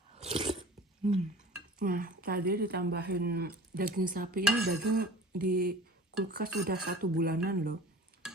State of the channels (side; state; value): both; normal; correlation 0.41